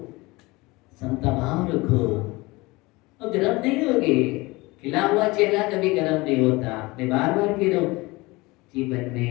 समता भाव रखो, और गर्म नहीं होगे। खिला हुआ चेहरा कभी गर्म नहीं होता। मैं बार बार कह रहा हूं, जीवन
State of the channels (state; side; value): quieter; right; 22.6 dB